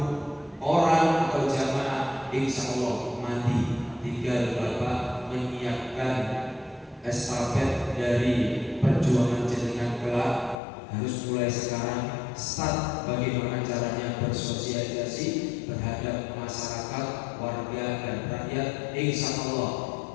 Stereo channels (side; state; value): right; drops out; at 10.6 s